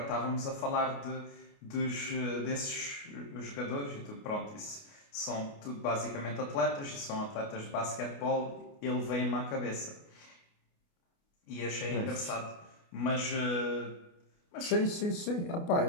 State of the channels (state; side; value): late; right; 29 ms